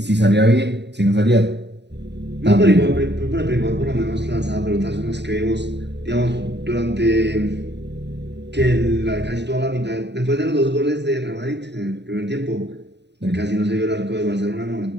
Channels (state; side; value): late; left; 0.50 ms